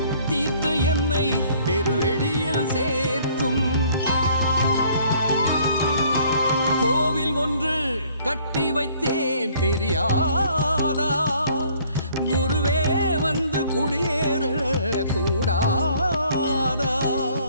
தீர்த்து என்னை பெருவெளியில் சேர்க்கும். கோவில் ஒன்று கட்டி வைத்தேன் தெரியாதா? குருவே வந்து குடியேற கூடாதா?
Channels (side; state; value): both; inverted; correlation -0.59